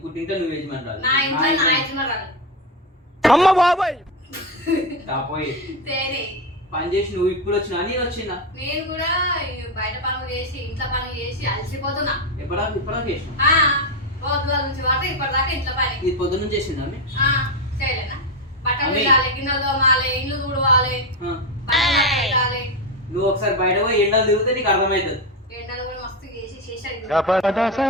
పుట్టింటే నువ్వు యజమాని రాదు నా ఇంట్లో నా యజమానురాలే అమ్మ బాబాయ్ రాపోయి తేనే పని చేసి నువ్వు ఇప్పుడు వచ్చినా నేను వచ్చినా నేను కూడా బయట పనులు చేసి ఇంట్లో పనులు చేసి అలసిపోతున్నా ఇప్పటిదాకా చేసిన పొద్దుల నుంచి వాటి ఇప్పటిదాకా ఇంట్లో పని ఇది పొద్దున్న చేసిందా చేయలేనా బట్టలు తీయాలి గిన్నెలు తోమాలి ఇల్లు తుడవాలి పెట్టాలి నువ్వు ఒకసారి బయట పోయి ఎండలు తిరిగితే నీకు అర్థమవుతుంది ఎండలు కూడా మస్తు చేసి చేసాడు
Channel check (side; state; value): both; normal; correlation 0.11